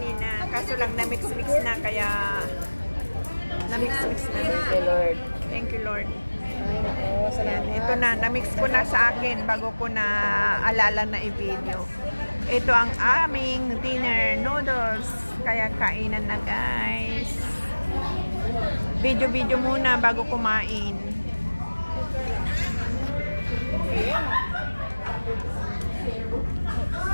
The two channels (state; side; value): inverted; both; correlation -1.00